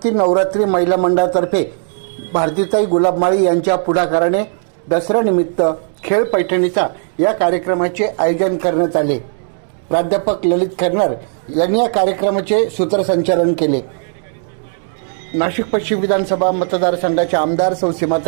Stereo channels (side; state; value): left; silent; 69 dB below the other